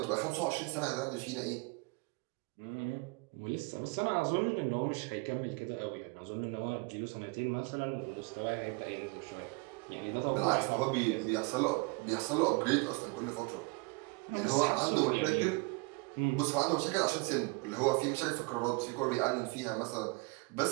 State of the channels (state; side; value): quieter; left; 28.5 dB